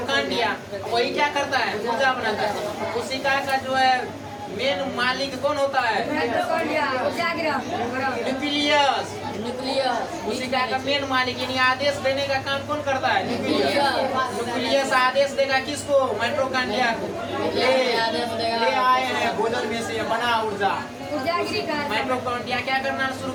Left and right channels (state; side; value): identical; both; correlation 1.00